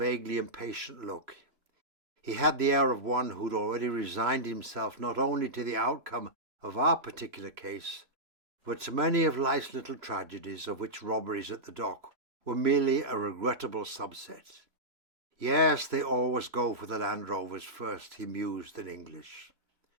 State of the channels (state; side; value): late; left; 3.0 ms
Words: impatient look. He had the air of one who'd already resigned himself not only to the outcome of our particular case, but to many of life's little tragedies, of which robberies at the dock were merely a regrettable subset. Yes, they always go for the Land Rovers first, he mused in English.